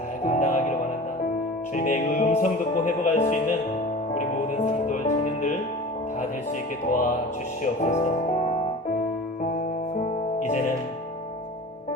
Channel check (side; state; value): both; normal; correlation 0.37